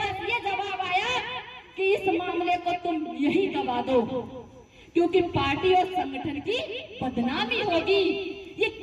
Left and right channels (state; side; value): identical; both; correlation 1.00